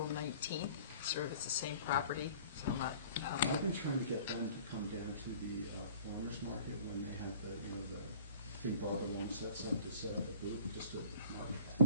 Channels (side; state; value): both; inverted; correlation -0.48